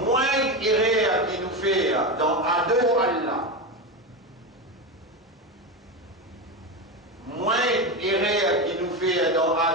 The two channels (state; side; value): normal; both; correlation 0.17